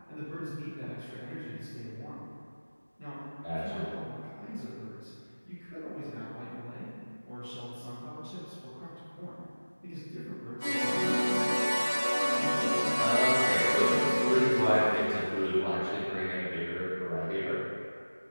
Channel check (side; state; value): both; inverted; correlation -1.00